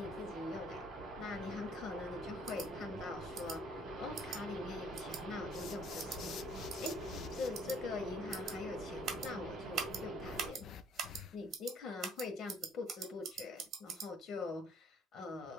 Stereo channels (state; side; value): normal; both; correlation 0.61